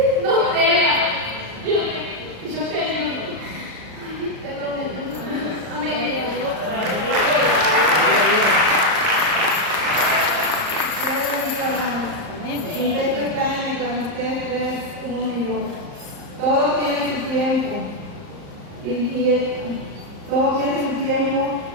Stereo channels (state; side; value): late; left; 38 ms